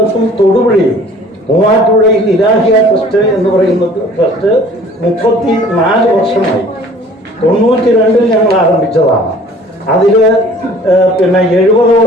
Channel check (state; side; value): normal; both; correlation 0.50